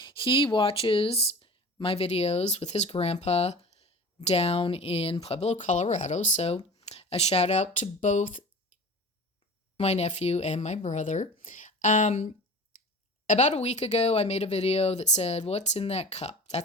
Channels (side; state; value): both; normal; correlation 0.38